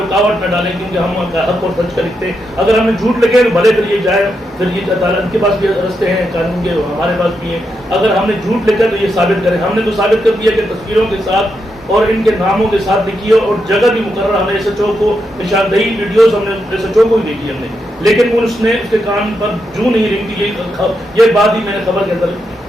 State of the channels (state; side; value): normal; both; correlation 0.83